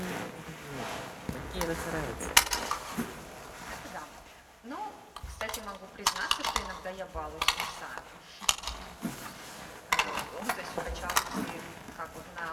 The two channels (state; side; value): identical; both; correlation 1.00